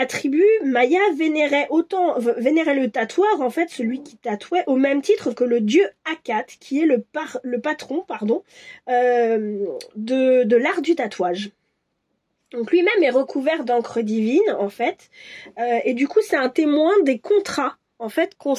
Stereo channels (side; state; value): both; identical; correlation 1.00